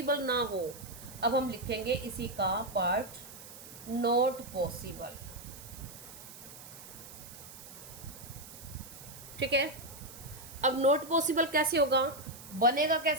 ना हो। अब हम लिखेंगे इसी का पार्ट, नॉट पॉसिबल। ठीक है, अब नॉट पॉसिबल कैसे होगा, बनेगा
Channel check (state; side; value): noise; right; hiss, 15 dB below the sound